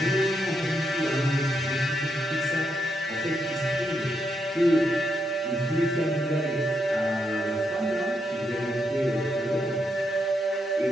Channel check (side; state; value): both; normal; correlation 0.80